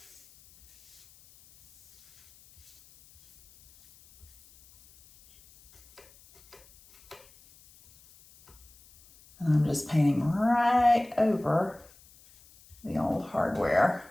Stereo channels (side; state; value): left; noise; hiss, 27 dB below the sound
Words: I'm just painting right over the old hardware.